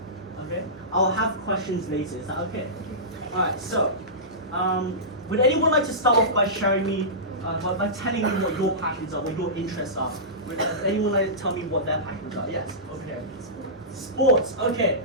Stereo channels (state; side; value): normal; both; correlation -0.19